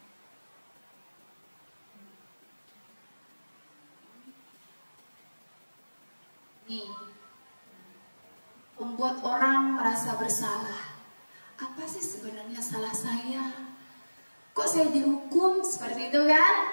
Nih, membuat orang merasa bersalah. Apa sih sebenarnya salah saya? Kok saya dihukum seperti itu kan?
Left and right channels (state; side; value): inverted; both; correlation -1.00